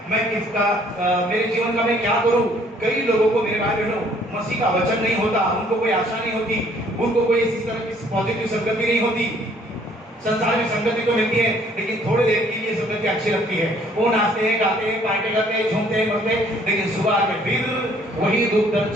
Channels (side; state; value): both; normal; correlation 0.61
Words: मैं किसका मेरे जीवन का मैं क्या करूं। कई लोगों को मेरे भाई बहनों मसीह का वचन नहीं होता, उनको कोई आशा नहीं होती, उनको कोई इस तरह की पॉजिटिव संगति नहीं होती। संसार में संगति तो मिलती है लेकिन थोड़ी देर के लिए संगति अच्छी लगती है। वो नाचते हैं, गाते हैं, पार्टी करते हैं, झूमते हैं, मरते हैं, लेकिन सुबह में फिर वही दुख दर्द